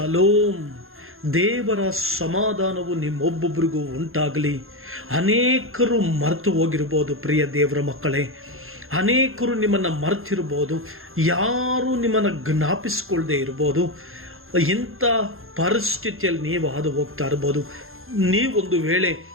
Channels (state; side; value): late; left; 0.61 ms